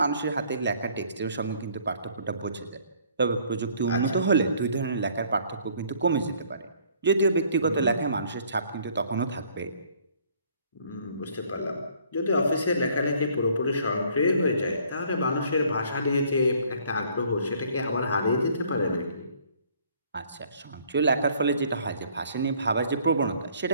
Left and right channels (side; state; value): both; inverted; correlation -0.59